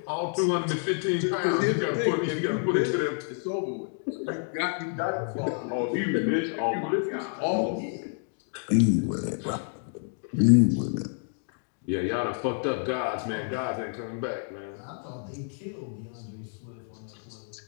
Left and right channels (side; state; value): right; silent; 59 dB below the other